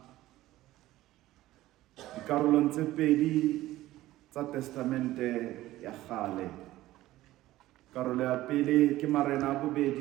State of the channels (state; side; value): quieter; left; 16.0 dB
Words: dikarolong tse pedi tsa testamente ya kgale. Karolo ya pele ke Marena a